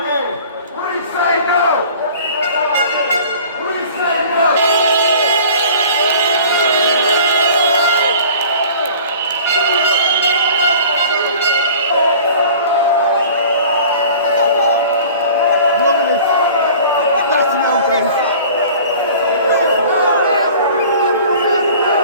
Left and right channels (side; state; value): both; inverted; correlation -0.46